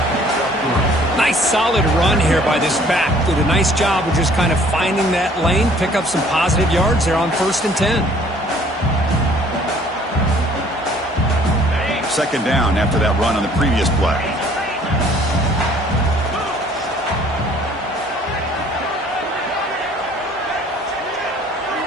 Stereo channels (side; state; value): both; normal; correlation 0.56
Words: Nice solid run here by this back. Did a nice job of just kind of finding that lane, pick up some positive yards there on 1st and 10. Second down after that run on the previous play.